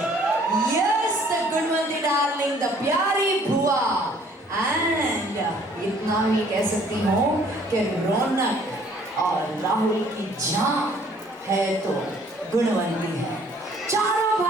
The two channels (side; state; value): both; normal; correlation 0.59